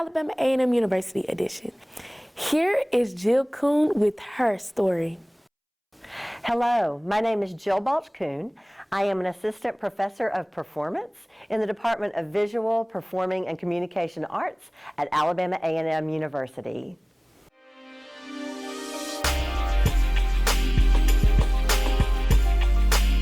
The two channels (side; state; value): both; identical; correlation 1.00